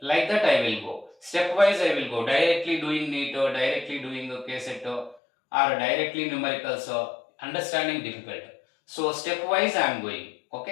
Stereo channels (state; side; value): drops out; right; at 5.2 s